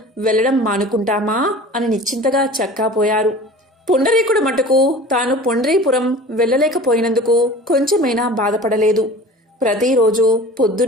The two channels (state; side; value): normal; both; correlation 0.40